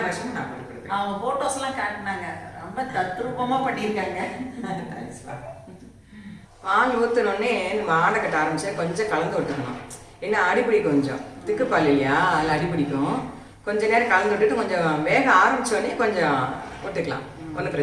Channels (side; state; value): both; identical; correlation 1.00